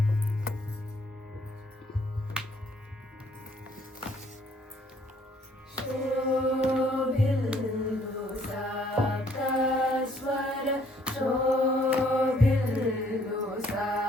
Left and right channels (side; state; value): both; normal; correlation 0.64